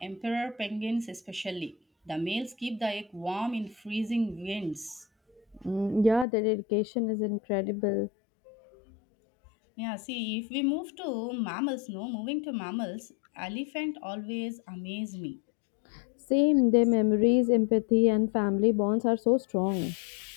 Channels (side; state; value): right; drops out; at 6.2 s